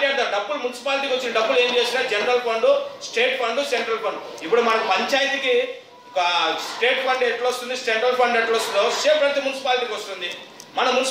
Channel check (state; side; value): identical; both; correlation 1.00